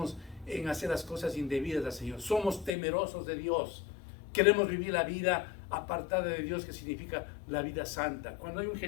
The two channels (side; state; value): right; drops out; at 2.7 s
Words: en hacer las cosas indebidas al Señor. Somos temerosos de Dios. Queremos vivir la vida apartada de Dios, que significa la vida santa. Cuando hay un